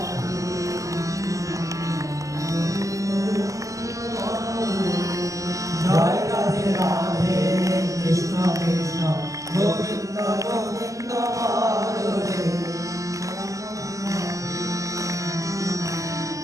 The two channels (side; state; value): left; late; 0.16 ms